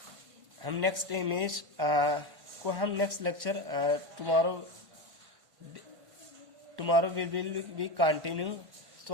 हम नेक्स्ट इमेज को हम next lecture tomorrow will be continue. तो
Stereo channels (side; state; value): left; late; 1.5 ms